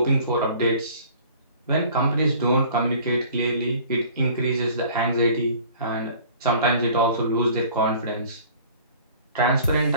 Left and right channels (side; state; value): both; inverted; correlation -0.49